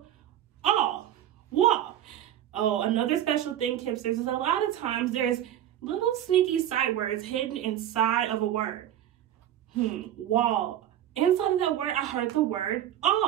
Oh, another special thing, Kipsters, is a lot of times there's little sneaky sight words hidden inside of a word. Wall. Inside of that word, I heard the word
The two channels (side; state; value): left; quieter; 11.6 dB